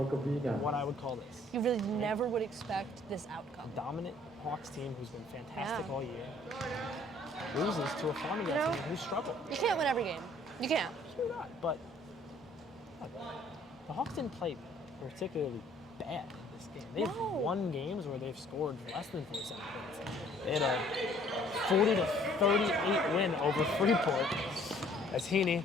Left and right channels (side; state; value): both; normal; correlation 0.58